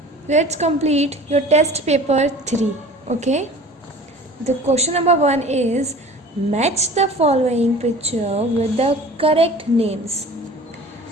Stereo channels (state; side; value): normal; both; correlation 0.43